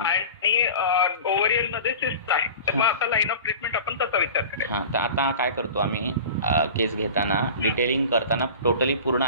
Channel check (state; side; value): inverted; both; correlation -0.37